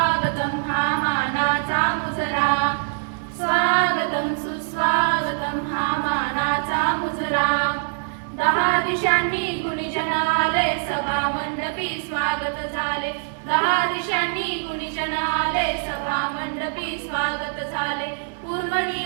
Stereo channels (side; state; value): left; silent; digital silence